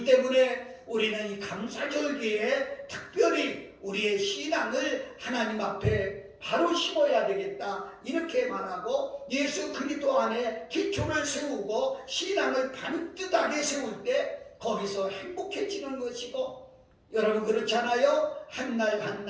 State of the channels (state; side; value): identical; both; correlation 1.00